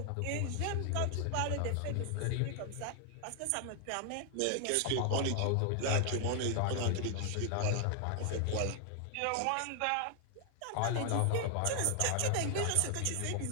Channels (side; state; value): both; different; correlation 0.00